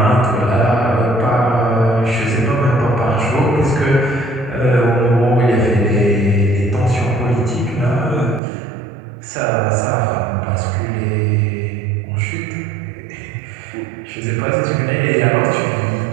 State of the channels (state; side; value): drops out; left; at 8.4 s